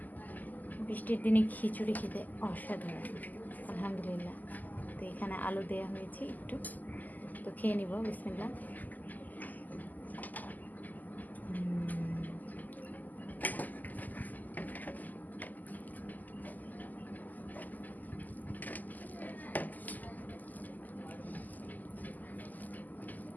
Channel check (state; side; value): late; right; 0.083 ms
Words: বৃষ্টির দিনে খিচুড়ি খেতে অসাধারণ, আলহামদুলিল্লাহ। তো এখানে আলু দেওয়া হয়েছে একটু, তো খেয়ে নিব। বিসমিল্লাহ।